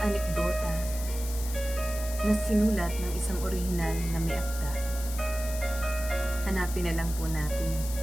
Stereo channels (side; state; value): left; noise; hiss, 11 dB below the sound